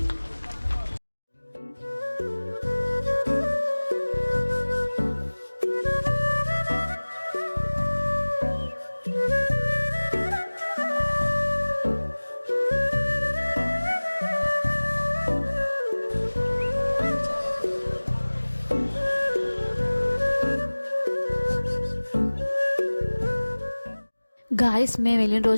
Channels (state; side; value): inverted; both; correlation -1.00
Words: గాయస్, మేము వెళ్ళిన